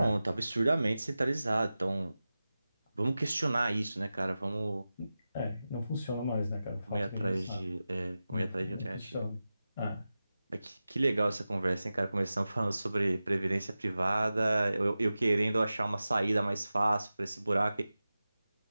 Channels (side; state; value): both; inverted; correlation -0.95